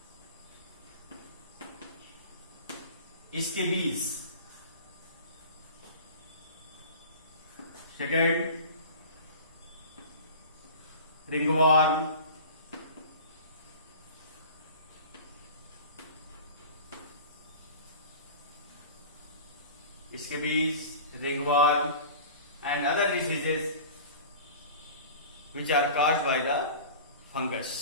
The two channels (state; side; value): inverted; both; correlation -0.38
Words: Scabies. Second, ringworm. Scabies, ringworm, and other diseases which are caused by the